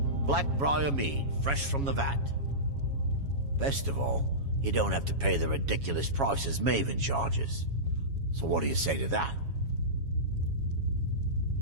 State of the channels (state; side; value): late; left; 7.2 ms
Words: Blackbriar mead, fresh from the vat. Best of all, you don't have to pay the ridiculous prices Maven charges. So what do you say to that?